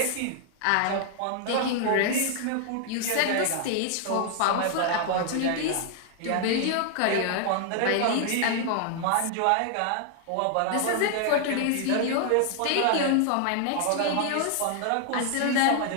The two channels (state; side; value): different; both; correlation 0.00